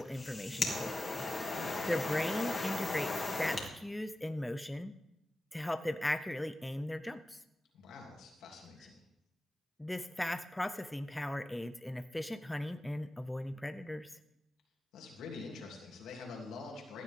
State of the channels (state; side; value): normal; both; correlation 0.94